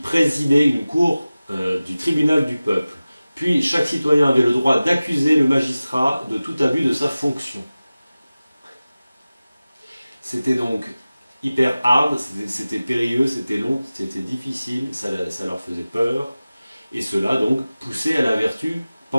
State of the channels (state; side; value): inverted; both; correlation -0.97